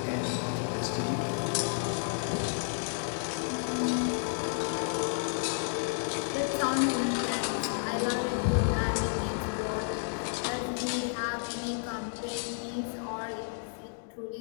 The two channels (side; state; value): right; silent; digital silence